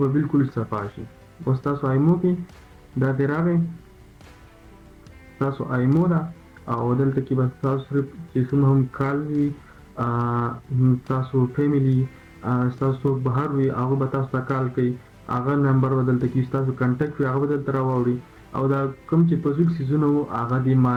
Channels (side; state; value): both; identical; correlation 1.00